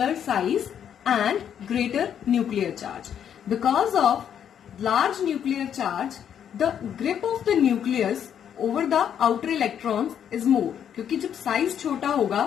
size and greater nuclear charge. Because of large nuclear charge, the grip of the nucleus over the outer electrons is more. क्योंकि जब साइज छोटा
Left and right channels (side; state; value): right; quieter; 8.9 dB